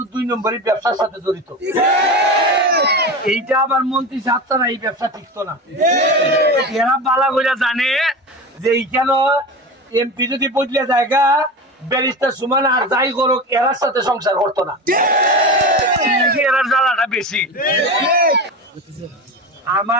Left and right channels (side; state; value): both; normal; correlation 0.26